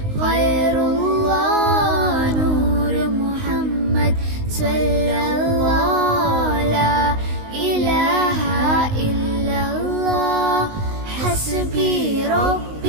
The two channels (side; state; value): left; late; 19 ms